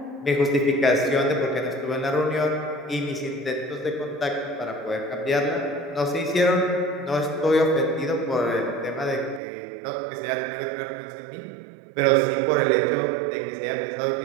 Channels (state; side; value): drops out; left; at 9.4 s